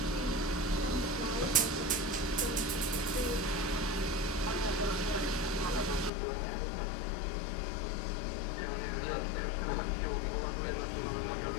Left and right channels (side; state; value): right; drops out; at 6.1 s